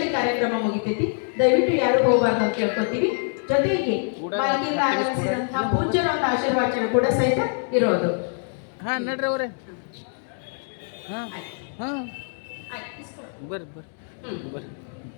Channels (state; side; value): silent; right; 59 dB below the other